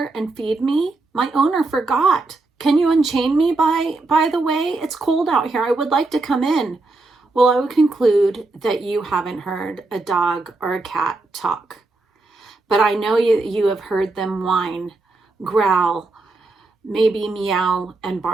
and feed me? My owner forgot. Can you unchain me by the way? It's cold out here. I would like to come in. Well, I would conclude that you haven't heard a dog or a cat talk. But I know you have heard them whine, growl, maybe meow and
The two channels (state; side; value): quieter; left; 3.3 dB